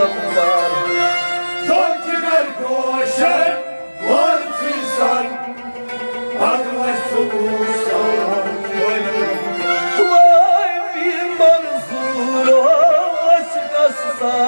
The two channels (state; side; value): inverted; both; correlation -1.00